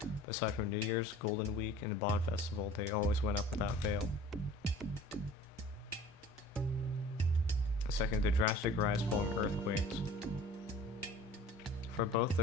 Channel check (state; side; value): normal; both; correlation 0.46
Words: Aside from New Year's, Golden Week, and the Bond Festival, they always went up without fail. Second, the drastic rise following earthquakes. For both